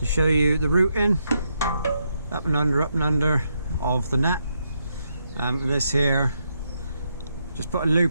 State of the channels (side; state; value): both; inverted; correlation -0.80